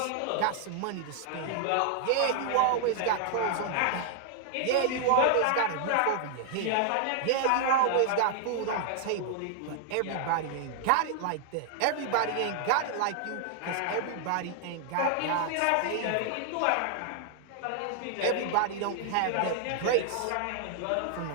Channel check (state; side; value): different; both; correlation 0.00